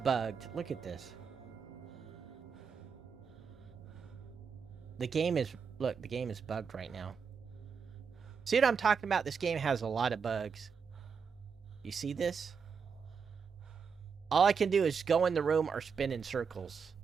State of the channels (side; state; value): left; quieter; 6.1 dB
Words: Look at this. The game is bugged right now. See what I'm talking about? This game has a lot of bugs. You see this? All I can do is go in the room or spin in circles.